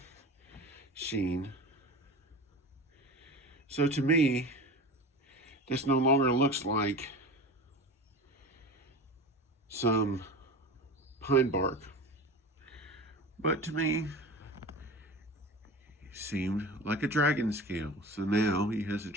sheen. So to me, this no longer looks like some pine bark, but to me, it seemed like a dragon scale. So now he has a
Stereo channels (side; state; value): both; normal; correlation 0.33